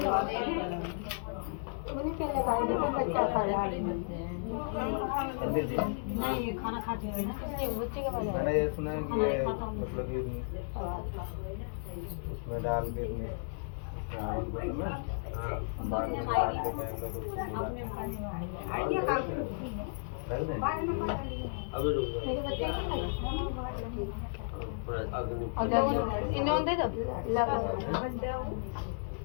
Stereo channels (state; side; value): silent; right; digital silence